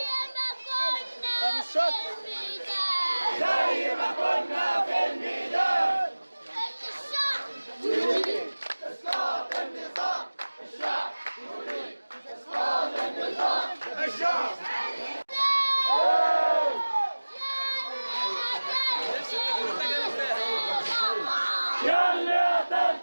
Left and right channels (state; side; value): inverted; both; correlation -1.00